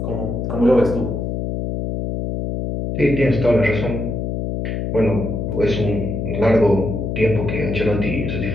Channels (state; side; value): noise; left; hum, 3 dB below the sound